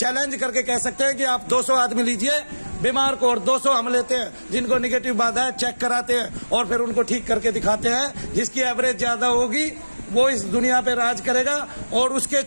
करके कह सकते हैं कि आप 200 आदमी लीजिए बीमार को, और 200 हम लेते हैं जिनको निगेटिव बाधा है, चेक कराते हैं और फिर उनको ठीक करके दिखाते हैं। जिसकी एवरेज ज्यादा होगी वो इस दुनिया पे राज करेगा, और उसके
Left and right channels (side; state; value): both; inverted; correlation -1.00